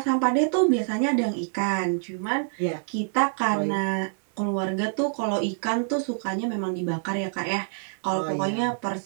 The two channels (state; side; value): silent; left; digital silence